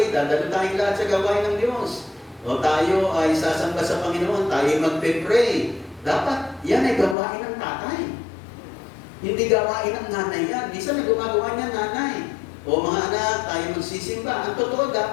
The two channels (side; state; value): right; drops out; at 7.2 s